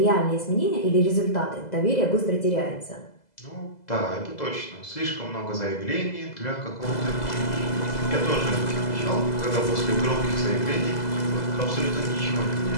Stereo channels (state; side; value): late; right; 2.0 ms